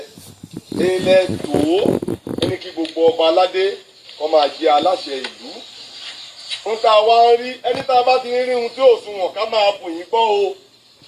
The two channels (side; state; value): both; identical; correlation 1.00